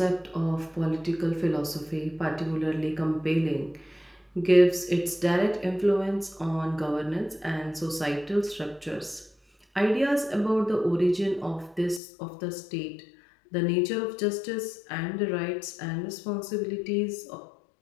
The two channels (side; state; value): right; drops out; at 12.0 s